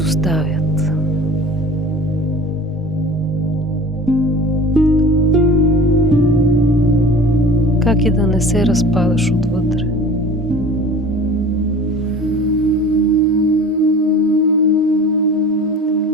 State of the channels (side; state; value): both; normal; correlation 0.40